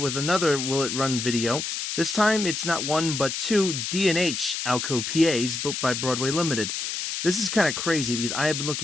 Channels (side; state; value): left; noise; hiss, 3 dB below the sound